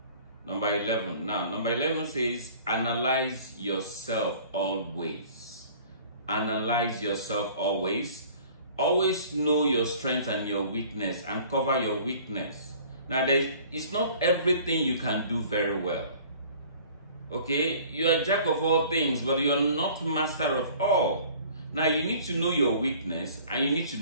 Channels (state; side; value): inverted; both; correlation -0.50